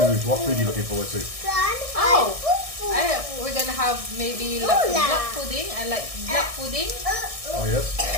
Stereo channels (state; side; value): late; left; 1.6 ms